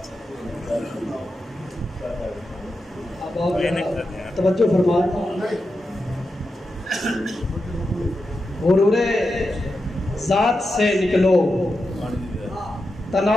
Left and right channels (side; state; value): both; normal; correlation 0.89